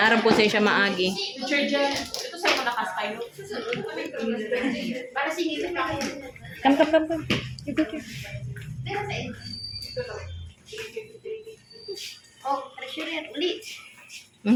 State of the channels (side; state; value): both; identical; correlation 1.00